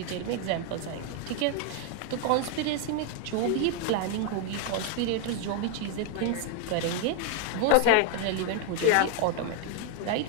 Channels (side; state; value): both; different; correlation 0.01